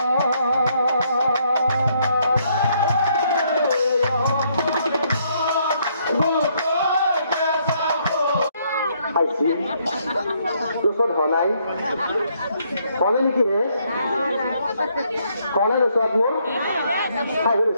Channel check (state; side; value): inverted; both; correlation -0.71